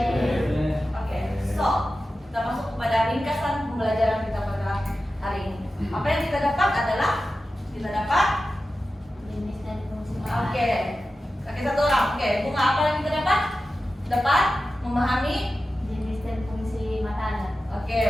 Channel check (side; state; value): both; normal; correlation 0.93